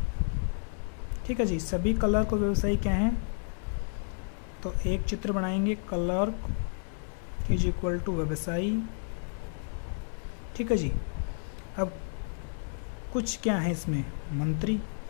ठीक है जी, सभी क्लर्क और व्यवसायी क्या हैं, तो एक चित्र बनाएंगे, क्लर्क इज इक्वल टू व्यवसायी। ठीक है जी। अब कुछ क्या है इसमें, मंत्री।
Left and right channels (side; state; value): right; silent; 57 dB below the other